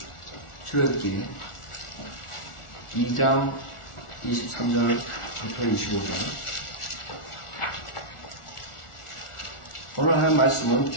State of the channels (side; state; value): right; late; 1.4 ms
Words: 출애굽기 2장 23절부터 25절. 오늘 하는 말씀은